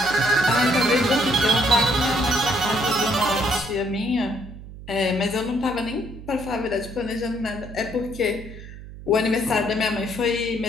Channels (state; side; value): noise; right; hum, 14 dB below the sound